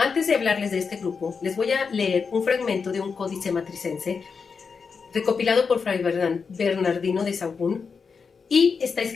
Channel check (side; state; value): right; quieter; 5.4 dB